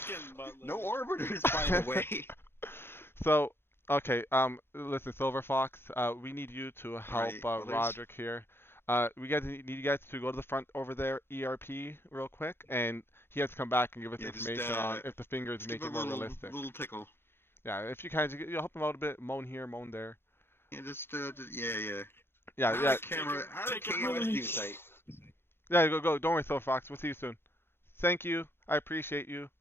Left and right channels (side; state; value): right; late; 0.11 ms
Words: butler. No orbiters, by the way. So, okay, listen, Silver Fox, we need you to help Right, others? Roderick here. We guys need you guys to go to the front over there, ERP, real quick, and he has to come back and give us Yeah, just, information on if the fingers Just make give it a more little, realistic. little tickle. Yeah, if you can, you'll help him out a bit, moan here, moan there. Yeah, yeah. Yeah, Out of yeah, camera, out of Take it KOS away. news site. yeah. Go. Don't worry, Silver Fox. We'll see you soon. Thank you. I appreciate you.